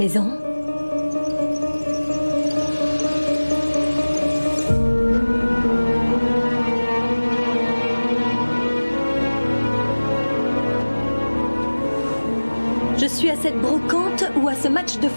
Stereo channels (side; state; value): both; inverted; correlation -1.00